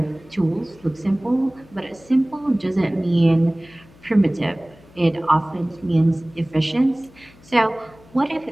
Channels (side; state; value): left; noise; hum, 25 dB below the sound